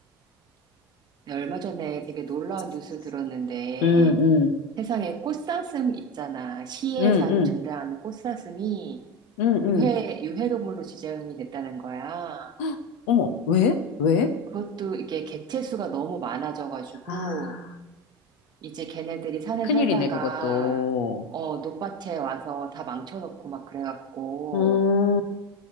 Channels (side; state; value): both; normal; correlation 0.18